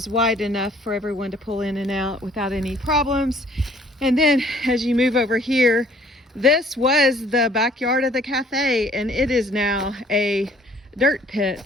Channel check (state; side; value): normal; both; correlation 0.58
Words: wide enough for everyone to pull in and out without any problems. And then as you move over here, this was the backyard of the cafe, and it is now a dirt